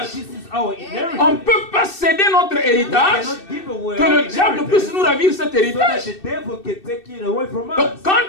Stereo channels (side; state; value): right; late; 2.6 ms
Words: this is our On inheritance. ne peut pas céder notre héritage, Cannot give away que our le diable inheritance puisse nous ravir cet so that héritage. the devil can take it away from Donc, us.